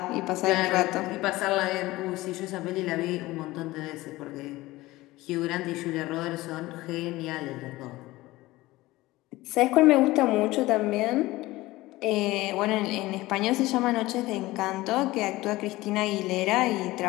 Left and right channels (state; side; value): quieter; right; 18.8 dB